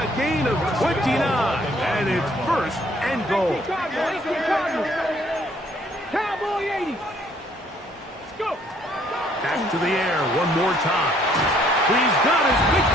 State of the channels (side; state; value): both; normal; correlation 0.63